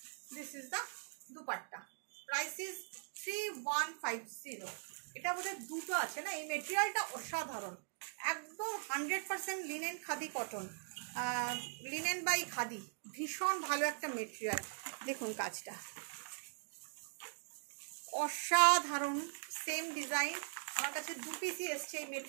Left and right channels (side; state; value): left; silent; digital silence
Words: this is the dupatta. Price is 3150। এটা বোধহয় দুটো আছে না। এই মেটেরিয়ালটা অসাধারণ, একদম 100% linen, khadi cotton, linen by khadi, ভীষণ ভালো একটা মেটেরিয়াল। দেখুন কাজটা অসাধারণ। সেম ডিজাইন আমার কাছে 2 পিসই এসছে, এই